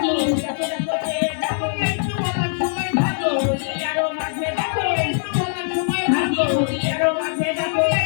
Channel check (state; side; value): silent; right; digital silence